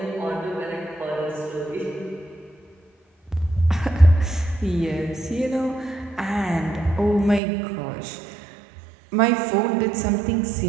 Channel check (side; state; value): left; drops out; at 7.4 s